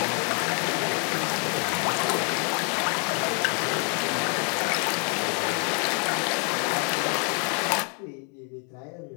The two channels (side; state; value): right; quieter; 39.1 dB